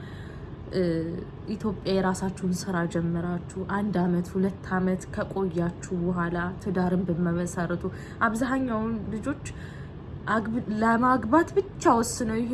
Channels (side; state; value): both; identical; correlation 1.00